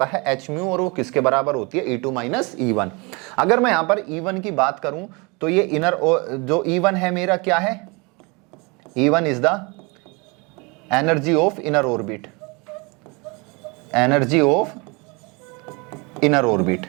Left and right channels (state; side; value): quieter; left; 28.7 dB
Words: है hν, और वो किसके बराबर होती है, E2 माइनस E1। अगर मैं यहां पर E1 की बात करूं तो ये इनर जो E1 है मेरा क्या है, E1 is the energy of inner orbit, energy of inner orbit.